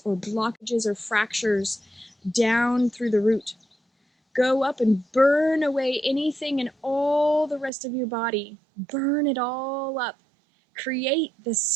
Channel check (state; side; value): drops out; left; at 7.7 s